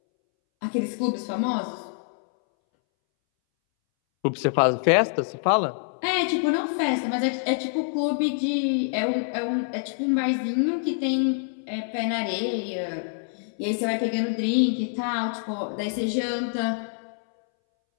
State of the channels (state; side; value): silent; right; 61 dB below the other